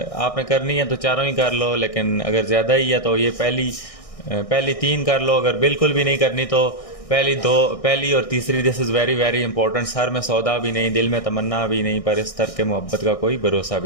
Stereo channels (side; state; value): right; late; 1.6 ms